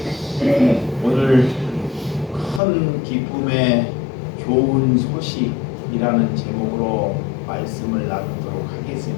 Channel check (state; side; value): drops out; right; at 2.6 s